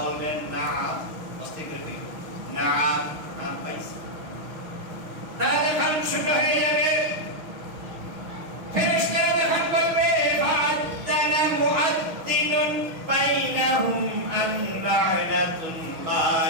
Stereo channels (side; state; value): left; late; 6.3 ms